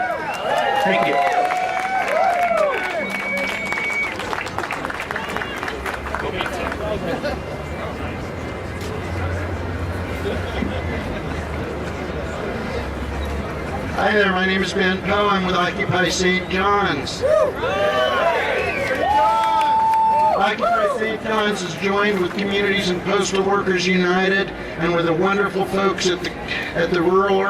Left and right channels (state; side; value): identical; both; correlation 1.00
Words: Thank you. Hi there, my name is Ben Poe. I'm with Occupy St. John's. Occupy St. John's is joined with Communities and Postal Workers United and with the wonderful folks at the Rural